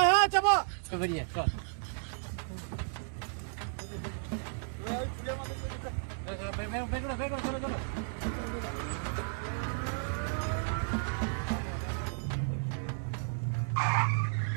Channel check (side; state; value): left; silent; 55 dB below the other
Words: হ্যাঁ যাবো। তো বেরিয়ে চল।